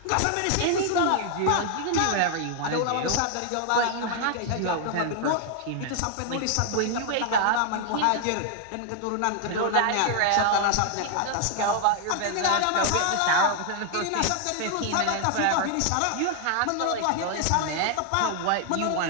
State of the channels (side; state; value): both; different; correlation 0.00